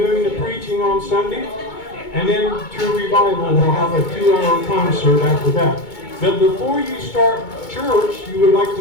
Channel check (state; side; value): late; right; 2.2 ms